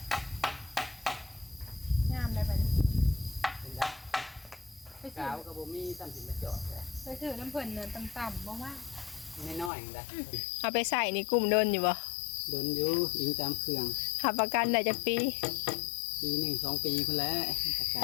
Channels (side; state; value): right; drops out; at 9.7 s